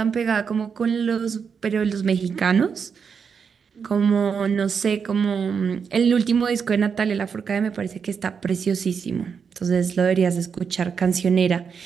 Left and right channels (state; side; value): quieter; left; 6.3 dB